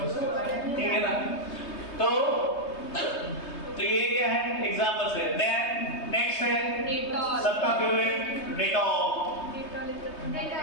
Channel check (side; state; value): right; late; 3.2 ms